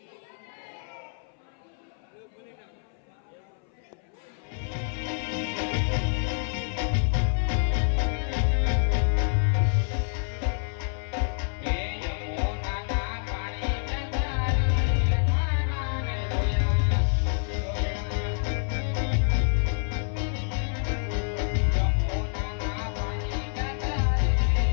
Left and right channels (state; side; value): silent; right; 60 dB below the other